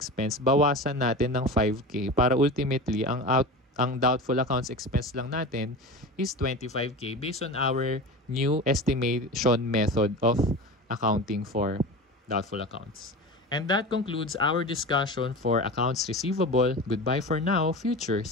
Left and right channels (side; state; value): both; normal; correlation 0.30